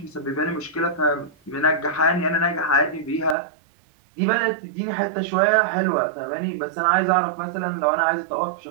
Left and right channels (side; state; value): left; drops out; at 3.4 s